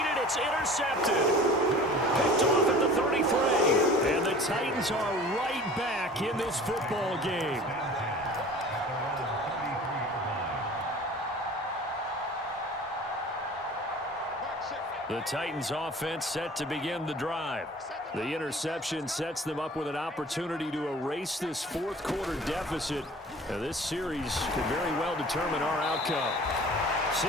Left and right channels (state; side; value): normal; both; correlation 0.44